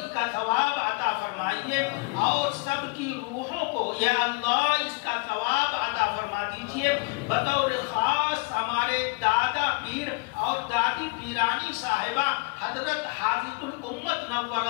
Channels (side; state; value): right; quieter; 27.1 dB